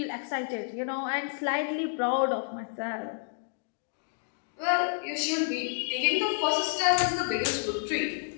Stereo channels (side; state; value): right; silent; digital silence